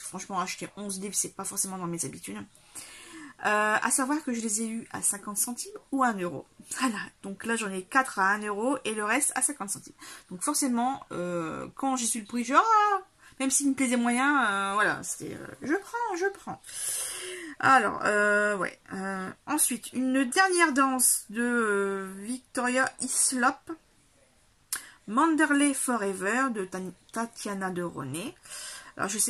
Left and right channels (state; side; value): identical; both; correlation 1.00